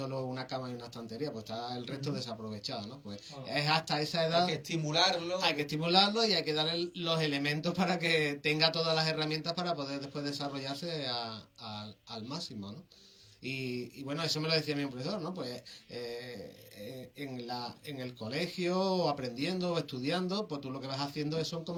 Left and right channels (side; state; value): both; identical; correlation 1.00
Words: una cama y una estantería, pues está el resto desaprovechado, ¿no? Pues es hasta esa edad. Hay que estimularlo. Hay que estimularlo y hay que darle los elementos para que tenga todas las herramientas para poder después desarrollarse al máximo, ¿no? Y bueno, eso me lo decía mi profesor, ¿no? Pues en el colegio, aprendiendo o estudiando, pues tú lo que vas haciendo son